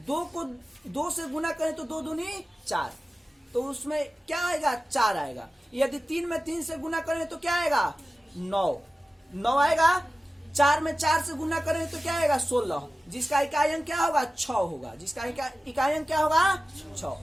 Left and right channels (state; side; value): normal; both; correlation 0.95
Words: 2 को 2 से गुना करें तो 2 दूनी 4, तो उसमें क्या आएगा 4 आएगा। यदि 3 में 3 से गुना करें तो क्या आएगा 9 आएगा। 4 में 4 से गुना करें तो क्या आएगा 16, जिसका इकाई अंक क्या होगा 6 होगा, जिसका इकाई अंक क्या होगा 6।